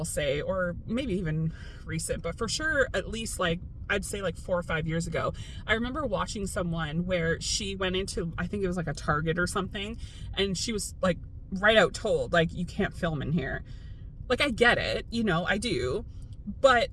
say, or maybe even recent, but for sure, at least like, I'd say like 4 or 5 years ago, I remember watching someone where she went into, I think it was like a Target or something, and she was like right out told, like, you can't film in here. Like, I get it, you know, I do, but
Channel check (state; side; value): identical; both; correlation 1.00